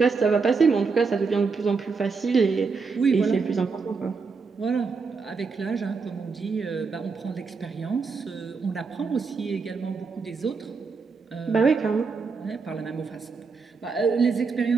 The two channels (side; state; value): left; quieter; 4.8 dB